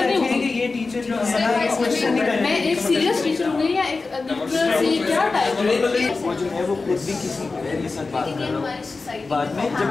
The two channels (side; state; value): right; quieter; 3.9 dB